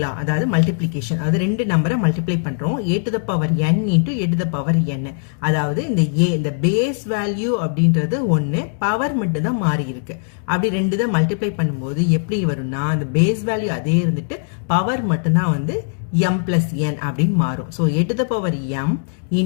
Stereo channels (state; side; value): silent; right; digital silence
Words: லா, அதாவது மல்டிப்ளிகேஷன், அதாவது ரெண்டு நம்பரை மல்டிப்ளை பண்ணுறோம், a to the power n into a to the power n. அதாவது இந்த பேஸ் வேல்யூ அப்படின்றது ஒன்று, பவர் மட்டும் தான் மாறி இருக்கு. அப்படி ரெண்டு தான் மல்டிப்ளை பண்ணும்போது எப்படி வரும்னா, அந்த பேஸ் வேல்யூ அதே இருந்துட்டு பவர் மட்டும்தான் வந்து m plus n அப்படின்னு மாறும். So a to the power m